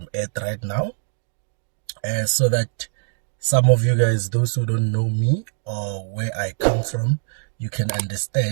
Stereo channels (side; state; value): left; silent; digital silence